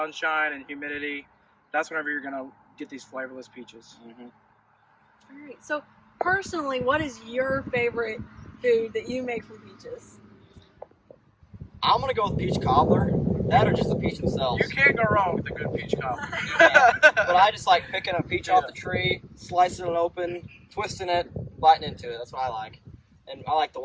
and humidity, that's whenever you're going to get these flavorless peaches. Mm-hmm. All right. So personally, what is your favorite food that you make from peaches? I'm gonna go with peach cobbler. That or just the peach themselves. You can't go wrong with a good peach cobbler. But I just like picking a peach off the tree, slicing it open, twisting it, biting into it. That's what I like. And I like the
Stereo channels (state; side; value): identical; both; correlation 1.00